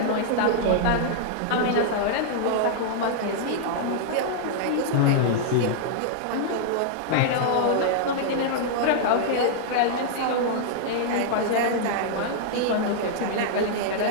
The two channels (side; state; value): both; different; correlation -0.01